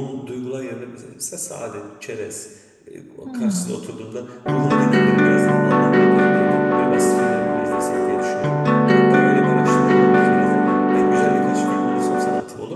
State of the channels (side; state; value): both; identical; correlation 1.00